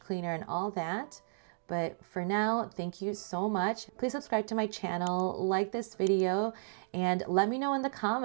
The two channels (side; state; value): left; silent; digital silence